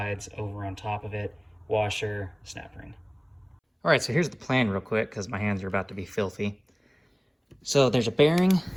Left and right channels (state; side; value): identical; both; correlation 1.00